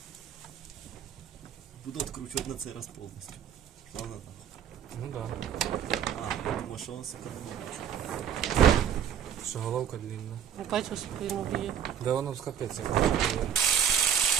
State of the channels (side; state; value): left; quieter; 8.9 dB